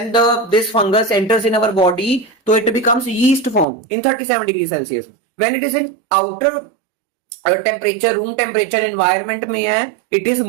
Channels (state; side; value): drops out; left; at 3.7 s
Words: this fungus enters in our body तो it becomes yeast form in 37 degree Celsius. When it is in outer temperature, room temperature environment में है, it is